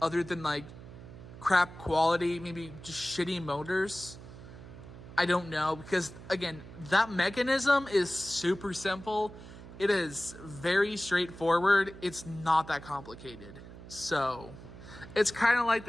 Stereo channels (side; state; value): right; noise; hum, 15 dB below the sound